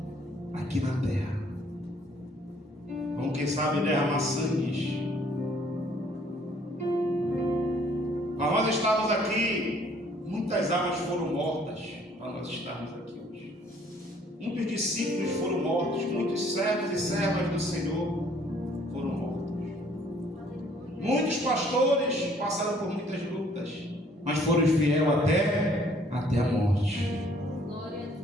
aqui na terra. quem sabe, derramar sangue. Para nós estarmos aqui, muitas almas foram mortas para nós estarmos aqui hoje. Muitos discípulos foram mortos, muitos servos e servas do Senhor foram mortos. Muitos pastores passaram por muitas lutas, mas foram fiéis até a morte.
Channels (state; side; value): normal; both; correlation 0.61